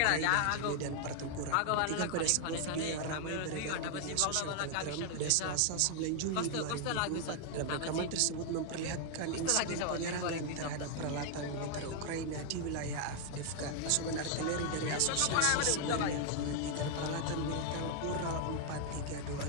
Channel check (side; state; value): both; different; correlation 0.00